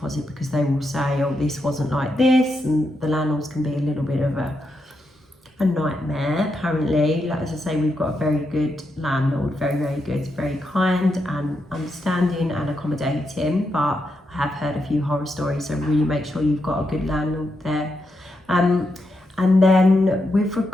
because they will say, oh, this wasn't like this, and the landlords can be a little bit of a nightmare. Apparently, like as I say, we've got a very good landlord, very, very good, very kind and understanding and accommodating, but I have heard a few horror stories, so really make sure you've got a good landlord there. And then with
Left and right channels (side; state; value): both; normal; correlation 0.83